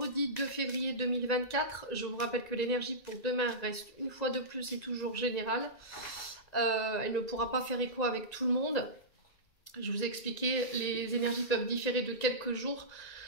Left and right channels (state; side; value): late; right; 1.9 ms